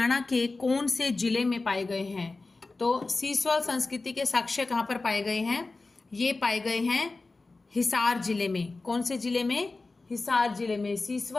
के कौन से जिले में पाए गए हैं? तो सीसवाल संस्कृति के साक्ष्य कहाँ पर पाए गए हैं? ये पाए गए हैं हिसार जिले में. कौन से जिले में? हिसार जिले में.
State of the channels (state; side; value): quieter; right; 3.5 dB